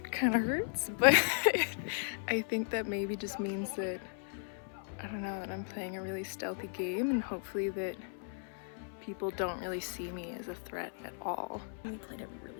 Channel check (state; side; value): silent; right; 54 dB below the other